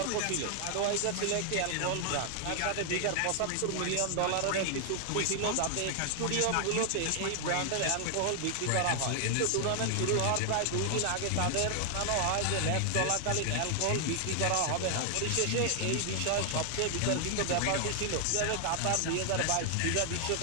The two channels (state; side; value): different; both; correlation 0.00